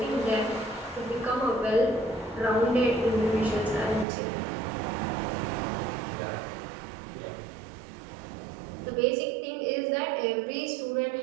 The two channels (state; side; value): drops out; left; at 4.0 s